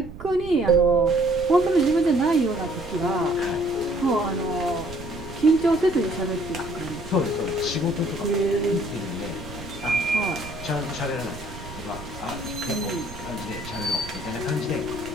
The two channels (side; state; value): right; noise; rumble, 13 dB below the sound